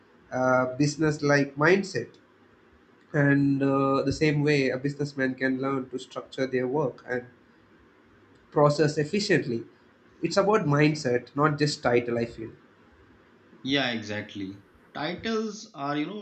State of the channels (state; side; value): identical; both; correlation 1.00